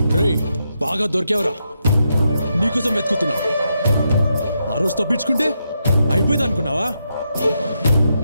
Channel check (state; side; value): inverted; both; correlation -0.82